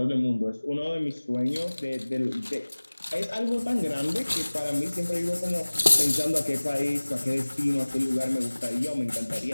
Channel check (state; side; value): inverted; both; correlation -1.00